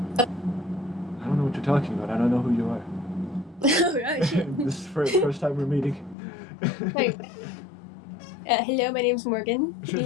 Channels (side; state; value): right; drops out; at 6.2 s